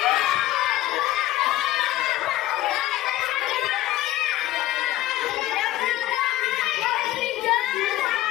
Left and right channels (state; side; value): quieter; right; 15.1 dB